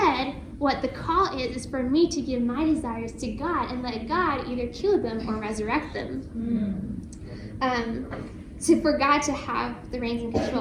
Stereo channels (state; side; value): identical; both; correlation 1.00